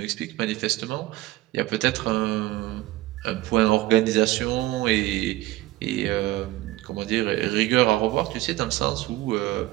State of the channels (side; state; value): left; quieter; 17.0 dB